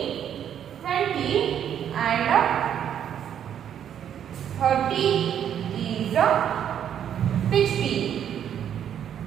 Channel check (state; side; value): quieter; left; 9.4 dB